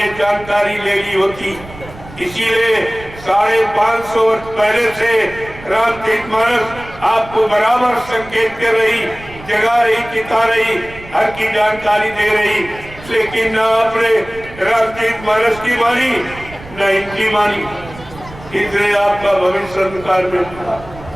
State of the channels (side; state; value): right; noise; rumble, 17 dB below the sound